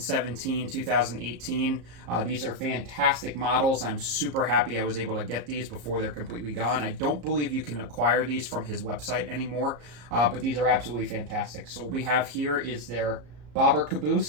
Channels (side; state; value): left; late; 34 ms